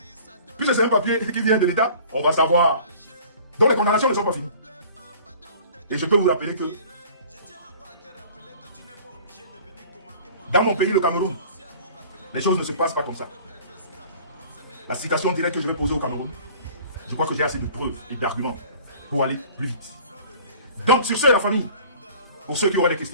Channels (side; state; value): both; inverted; correlation -0.46